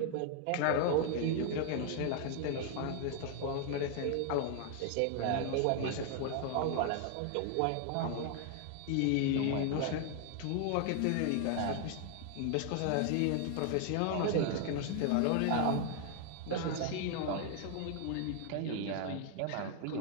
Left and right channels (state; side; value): different; both; correlation 0.00